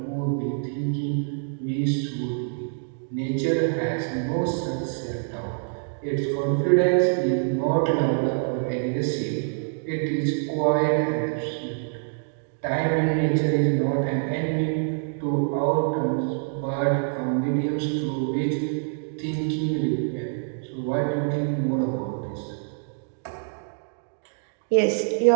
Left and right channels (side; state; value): left; silent; digital silence